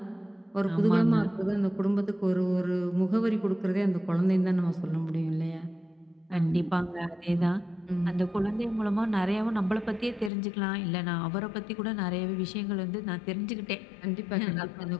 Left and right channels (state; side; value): drops out; right; at 10.3 s